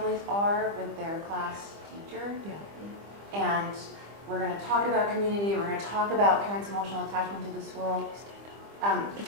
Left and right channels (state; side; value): late; left; 25 ms